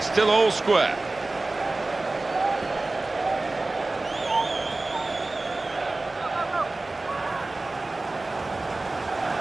still all square.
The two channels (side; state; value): left; quieter; 3.1 dB